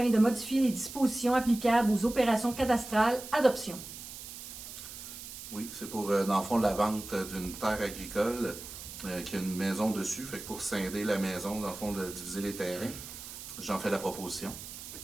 de modifier les dispositions applicables aux opérations cadastrales. Adoption. Oui, c'est pour, dans le fond, la vente d'une terre agricole qui a une maison dessus. Fait que pour scinder la maison, dans le fond, de diviser les terrains, j'en fais la proposition.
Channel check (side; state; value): right; noise; hiss, 12 dB below the sound